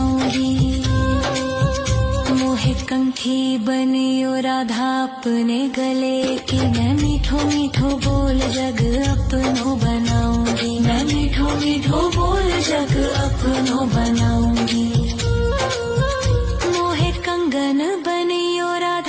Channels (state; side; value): identical; both; correlation 1.00